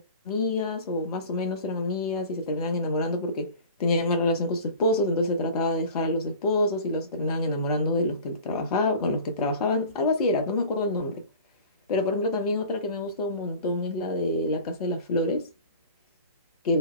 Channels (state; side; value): inverted; both; correlation -0.41